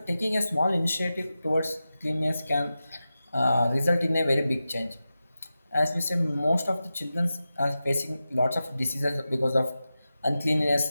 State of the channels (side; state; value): both; inverted; correlation -0.93